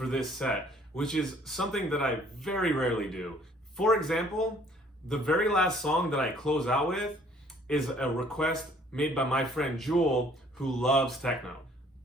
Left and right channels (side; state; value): both; normal; correlation 0.59